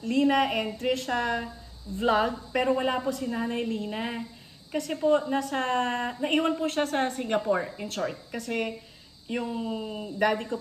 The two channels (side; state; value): both; identical; correlation 1.00